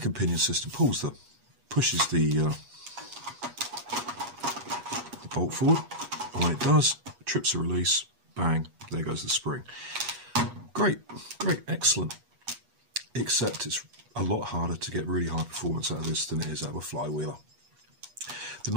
and pinion system pushes the bolt forward, and when it does, trips the release, bang, there goes the spring. Great, excellent. Except it's a lot harder to get really high performance out of this than it is out of a flywheeler. The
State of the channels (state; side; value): late; left; 8.3 ms